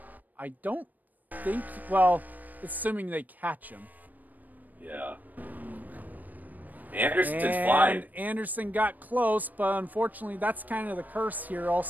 I don't think... Well, assuming they catch him. Yeah. Anderson's flying. Anderson got close, but unfortunately that's kind of the curse here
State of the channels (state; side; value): late; left; 0.083 ms